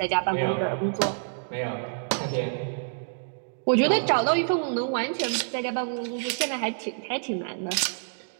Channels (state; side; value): silent; left; digital silence